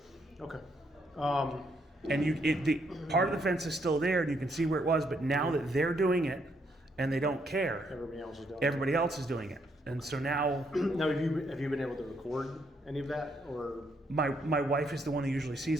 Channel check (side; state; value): both; normal; correlation 0.74